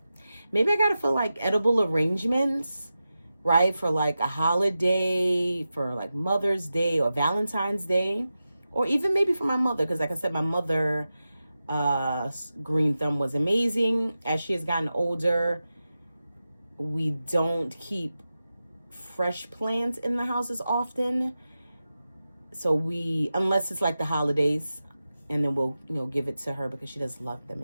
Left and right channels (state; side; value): inverted; both; correlation -0.92